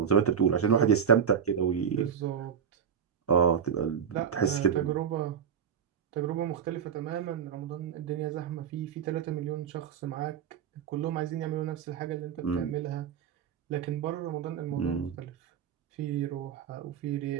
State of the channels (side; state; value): left; quieter; 7.9 dB